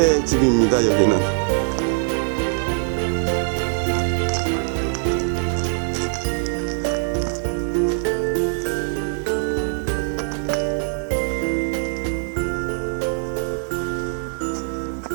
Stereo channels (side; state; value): left; silent; 64 dB below the other